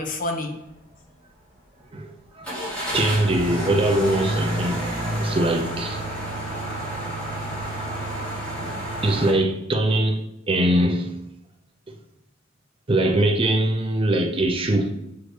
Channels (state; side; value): normal; both; correlation 0.64